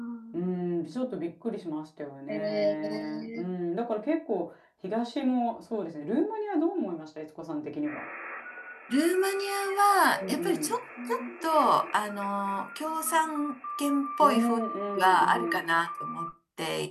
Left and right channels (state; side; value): identical; both; correlation 1.00